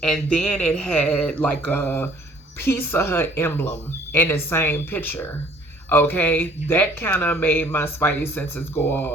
And then it had like a Pizza Hut emblem in the same picture. Okay, that kind of made my spidey senses go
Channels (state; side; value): normal; both; correlation 0.56